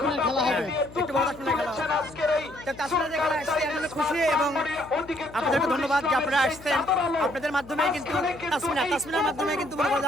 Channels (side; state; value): left; noise; hum, 19 dB below the sound